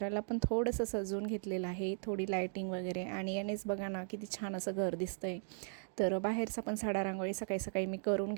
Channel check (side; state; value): left; silent; 53 dB below the other